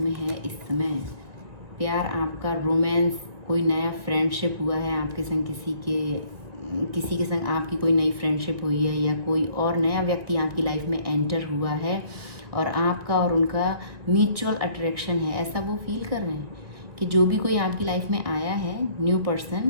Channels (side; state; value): left; late; 1.8 ms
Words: में है इस समय। प्यार आपका, रोमांस, कोई नया फ्रेंडशिप हुआ है आपके संग, किसी के संग आपकी कोई नई फ्रेंडशिप हुई है या कोई और नया व्यक्ति आपकी लाइफ में एंटर हुआ है और आपका और उनका म्यूचुअल अट्रैक्शन है। ऐसा वो फील कर रहे हैं कि जो भी कोई आपकी लाइफ में आया है, न्यू